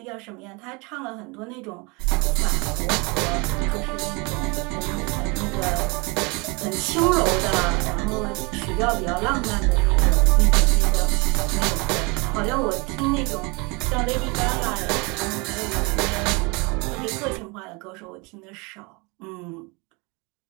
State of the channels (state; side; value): quieter; left; 28.1 dB